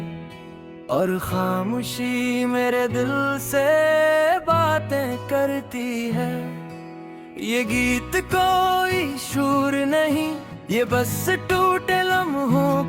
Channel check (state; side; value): identical; both; correlation 1.00